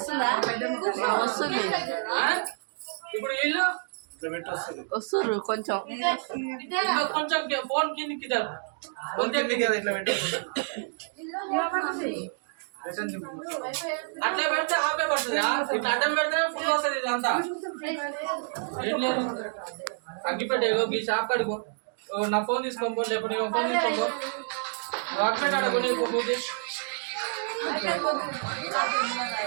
వస్తుంది ఇప్పుడు వీళ్ళు వస్తుర్రు కొంచెం కొంచెం ఫోన్ కిందికి ఇట్లా పెట్టి అట్లా పెడితే ఆపే పడుతుంది. ఇట్లా అడ్డం పెడితే ఫుల్ వస్తుంది. ఇదంతా ఏం లేదు. అగ్గిపెట్టే ఈ షాప్ కడుకో, నా ఫోన్ తీసుకోపో, లేకపోతే నీ ఫోన్ తీసుకోపో, అగ్గిపెట్టి అడుగు నీకు పూజ.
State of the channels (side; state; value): left; silent; digital silence